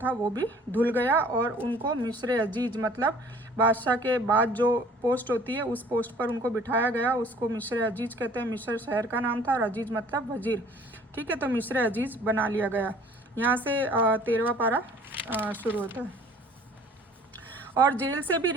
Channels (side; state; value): both; normal; correlation 0.53